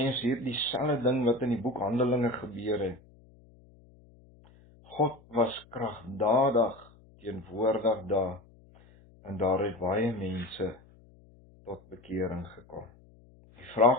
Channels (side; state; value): left; noise; hum, 26 dB below the sound